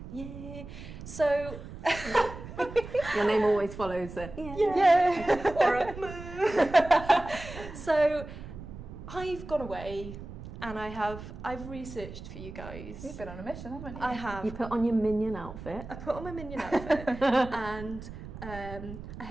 Yeah. So... Your name always follows the yeah. Or a So I've gone away and I've researched for you guys. You've been on a mission, haven't you? I have. You put on your minion outfit. I put on my minion outfit and I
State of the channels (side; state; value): right; noise; rumble, 12 dB below the sound